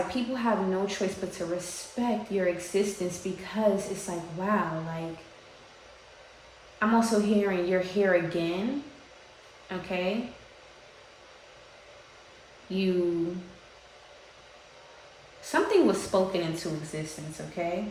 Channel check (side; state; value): both; identical; correlation 1.00